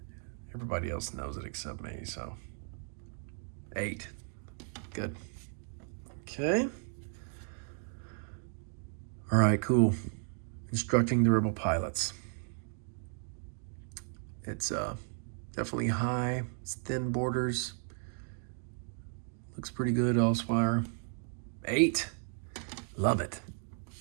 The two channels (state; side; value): silent; left; 55 dB below the other